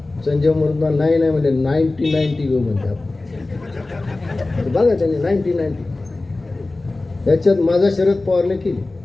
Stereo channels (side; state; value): right; quieter; 3.1 dB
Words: संजय म्हणून नाही म्हणजे 90 घेऊ म्हणते. बघा त्यांनी 90. त्याच्यात माझा शरद पवारने केली.